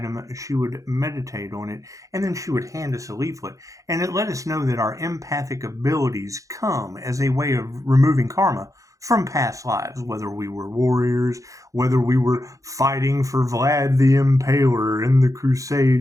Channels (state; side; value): late; left; 0.16 ms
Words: she would meditate on it, and then she would hand us a leaflet. And it let us know that our empathic abilities come as a way of removing karma from past lives, whether we were warriors, whether we were fighting for Vlad the Impaler in the